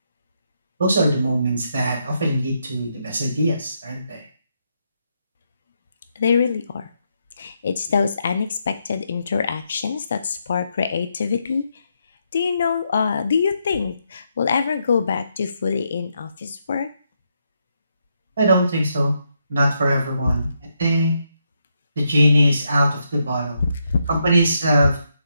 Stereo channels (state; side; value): inverted; both; correlation -0.80